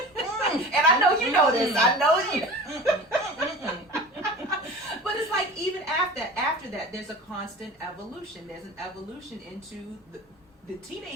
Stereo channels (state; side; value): normal; both; correlation 0.36